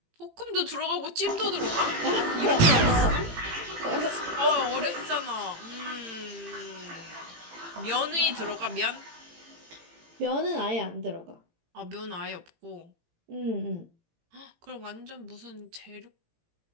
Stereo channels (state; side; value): late; left; 18 ms